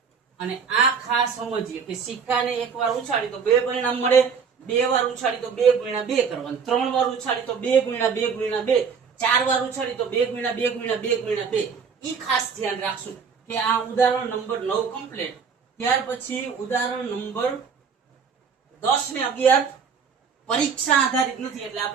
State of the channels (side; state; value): left; quieter; 6.1 dB